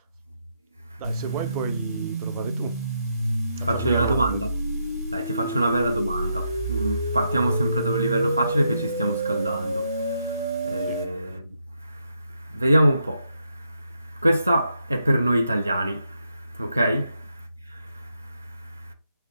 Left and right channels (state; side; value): inverted; both; correlation -0.79